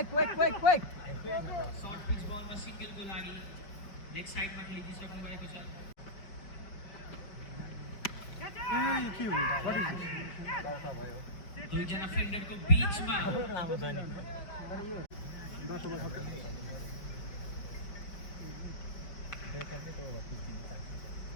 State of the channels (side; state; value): right; late; 5.1 ms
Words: quick short pitch बलमा सिंगलको लागि लेग साइडमा खेलिदिइसक्नु भएको छ। दुईजना फिल्डरको बीचमा